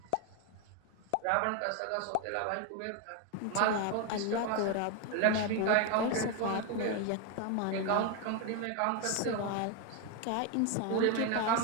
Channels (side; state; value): both; different; correlation 0.01